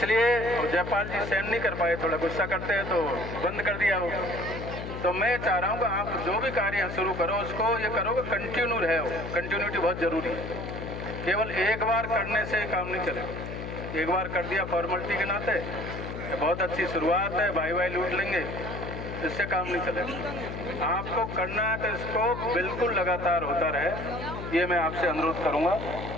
जयपाल जी सहन नहीं कर पाए, थोड़ा गुस्सा करते हैं तो बंद कर दिया वो। तो मैं चाह रहा हूँ कि आप जो भी कार्य शुरू करो उसको ये करो कि कंटिन्यू रहे हो, कंटिन्यूटी बहुत ज़रूरी है। केवल एक बार करने से काम नहीं चलेगा, एक बार कर दिया फॉर्मेलिटी के नाते, ये बहुत अच्छी शुरुआत है, भाई लूट लेंगे, इससे काम नहीं चलेगा। आपको करना है तो इसको बिल्कुल लगातार होता रहे, ये मैं आपसे अनुरोध करूँगा।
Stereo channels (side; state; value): left; noise; hum, 7 dB below the sound